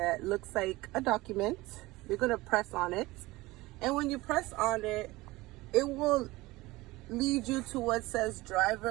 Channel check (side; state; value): left; quieter; 20.2 dB